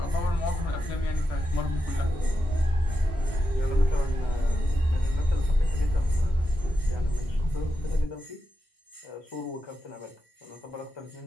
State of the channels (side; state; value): both; normal; correlation 0.88